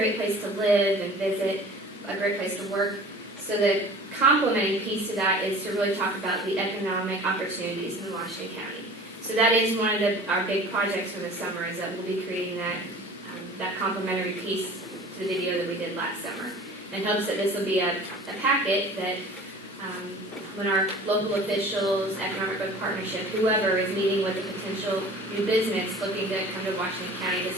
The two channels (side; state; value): both; normal; correlation 0.43